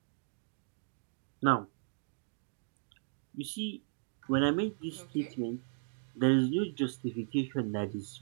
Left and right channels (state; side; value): silent; left; digital silence